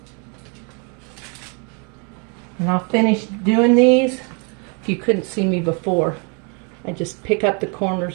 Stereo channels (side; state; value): left; quieter; 35.7 dB